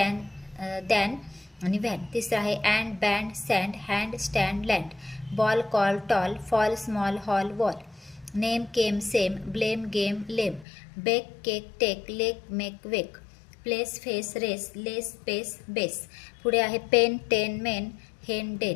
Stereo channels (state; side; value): drops out; right; at 10.7 s